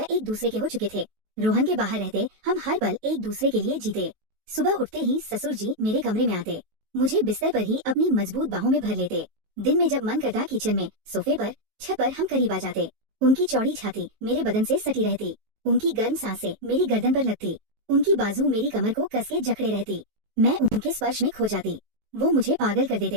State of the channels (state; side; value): late; left; 18 ms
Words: एक दूसरे के हो चुके थे। रोहन के बाहर रहते हम हर पल एक दूसरे के लिए जीते। सुबह उठते ही ससुर जी मेरे कमरे में आते, मुझे बिस्तर पर ही अपनी मजबूत बाहों में भर लेते। दिन में जब मन करता किचन में, सोफे पर, छत पर हम करीब आ जाते। उनकी चौड़ी छाती मेरे बदन से सटी रहती। उनकी गर्म सांसें मेरी गर्दन पर लगती। उनकी बाजू मेरी कमर को कस के जकड़े रहती। मैं उनके स्पर्श में खो जाती। वो मुझे पागल कर